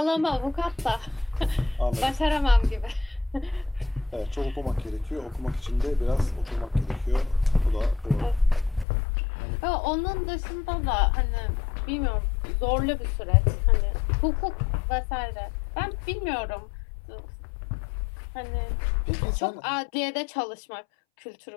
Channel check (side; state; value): right; drops out; at 8.8 s